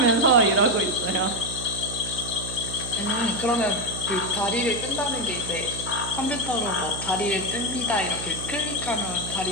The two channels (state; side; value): noise; right; hum, 9 dB below the sound